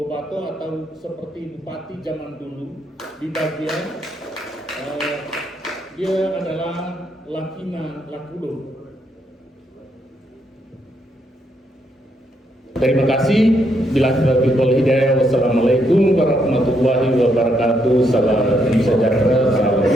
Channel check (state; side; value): normal; both; correlation 0.76